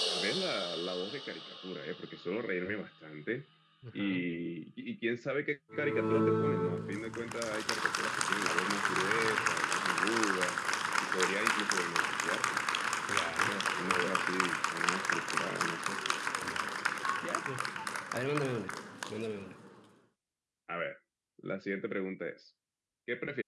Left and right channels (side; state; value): both; identical; correlation 1.00